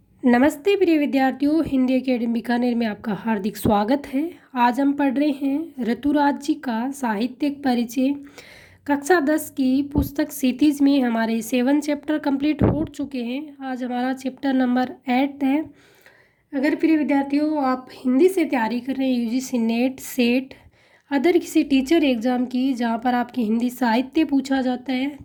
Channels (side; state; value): both; identical; correlation 1.00